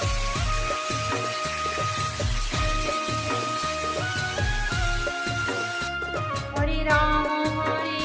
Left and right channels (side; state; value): both; identical; correlation 1.00